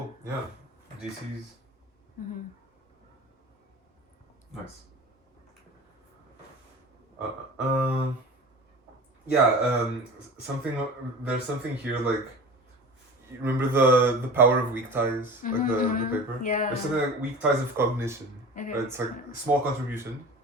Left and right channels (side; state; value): both; normal; correlation 0.36